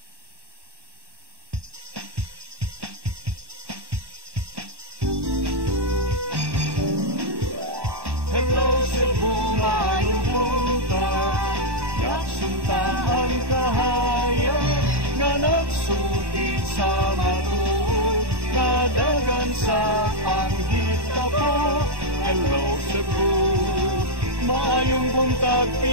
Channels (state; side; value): late; left; 1.1 ms